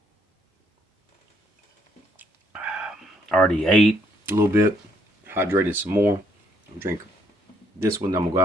I already ate a little bit, hydrated some more. I'm drinking this one. I'm gonna go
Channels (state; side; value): normal; both; correlation 0.71